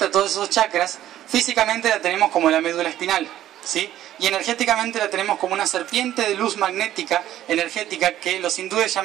todos esos chakras, físicamente la tenemos como la médula espinal, ¿sí? Y energéticamente la tenemos como una serpiente de luz magnética, energética, que los hindúes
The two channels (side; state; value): left; quieter; 12.7 dB